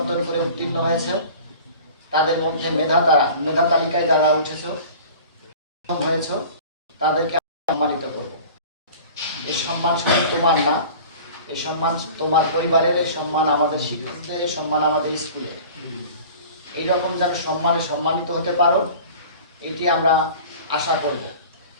করে উত্তীর্ণ হয়েছে, তাদের মধ্যে মেধা তালিকায় যারা হয়েছে তাদেরকে সম্মানিত করব। এই সম্মান শুধু তোমার না, এই সম্মান তোমার পরিবারের, এই সম্মান আমাদের শিক্ষকদের, এই সম্মান আমাদের স্কুলের। এইরকম যেন সম্মানে সম্মানিত হতে পারো, এটি আমরা আশা করব।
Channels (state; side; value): inverted; both; correlation -0.41